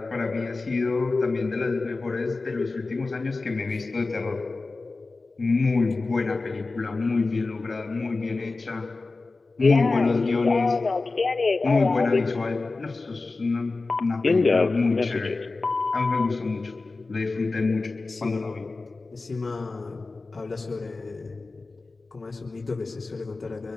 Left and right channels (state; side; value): quieter; right; 3.6 dB